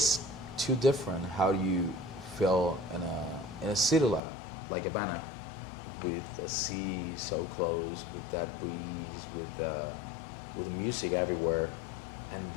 too different how you feel in a city like Havana, with the sea so close, with that breeze, with the music everywhere, and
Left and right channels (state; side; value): drops out; right; at 4.2 s